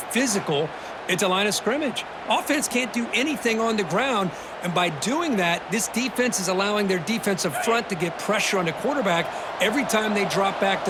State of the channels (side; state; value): both; identical; correlation 1.00